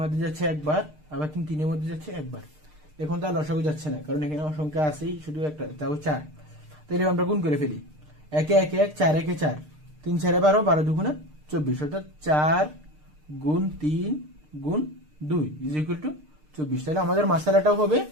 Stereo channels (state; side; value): late; left; 6.6 ms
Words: মধ্যে যাচ্ছে 1 বার, আবার 3 3 এর মধ্যে যাচ্ছে 1 বার। এখন তো আর লসাগু যাচ্ছে না, কারণ এখানে সংখ্যা আছেই শুধু একটা, তাও 4। তাহলে আমরা গুণ করে ফেলি। 1 1 1 4 1 4, 3 4 12, 12 2 24, অর্থাৎ 4 গুণ 3 গুণ 2 ইজ ইকুয়াল টু 24। তাহলে আমাদের মাসালাটাও হবে